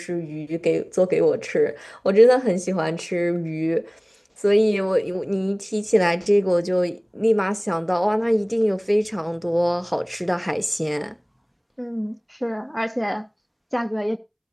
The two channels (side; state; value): both; identical; correlation 1.00